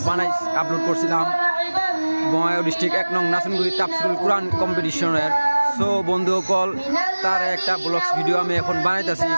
আপলোড করছিলাম বঙ্গাইগাঁও ডিস্ট্রিক্ট 1 নং নাসনগুড়ি তাফসিরুল কুরআন কম্পিটিশনের। সো বন্ধুসকল, তার একটা ব্লগস ভিডিও আমি এখন বানাইতেছি।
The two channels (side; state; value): both; inverted; correlation -1.00